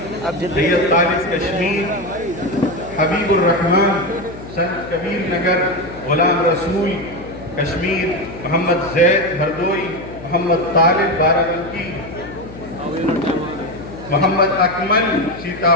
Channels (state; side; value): noise; left; hum, 15 dB below the sound